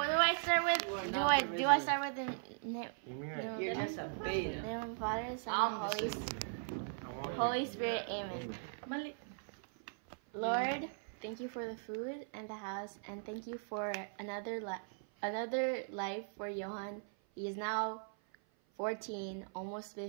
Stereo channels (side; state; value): left; silent; 52 dB below the other